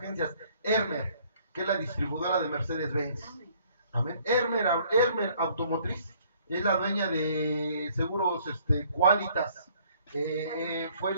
que es la distribuidora de Mercedes-Benz. Amén. Hermer Automotriz, es la dueña de Seguros Qualitas.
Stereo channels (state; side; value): inverted; both; correlation -0.61